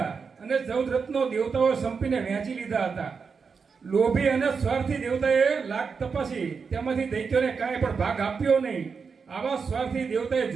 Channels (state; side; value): quieter; left; 5.5 dB